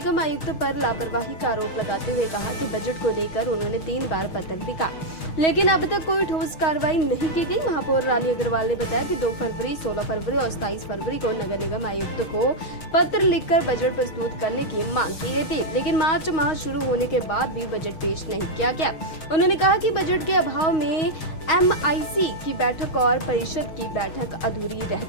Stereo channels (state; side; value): late; right; 6.3 ms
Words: आयुक्त पर लापरवाही का आरोप लगाते हुए कहा कि बजट को लेकर उन्होंने 3 बार पत्र लिखा, लेकिन अब तक कोई ठोस कार्रवाई नहीं की गई। महापौर रानी अग्रवाल ने बताया कि 2 फरवरी, 16 फरवरी और 27 फरवरी को नगर निगम आयुक्त को पत्र लिखकर बजट प्रस्तुत करने की मांग की गई थी, लेकिन मार्च माह शुरू होने के बाद भी बजट पेश नहीं किया गया। उन्होंने कहा कि बजट के अभाव में MIC की बैठक और परिषद की बैठक अधूरी रह